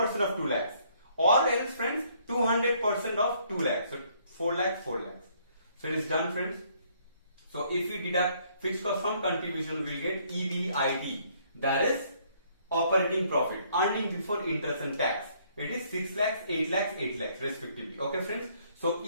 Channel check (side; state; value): both; inverted; correlation -0.66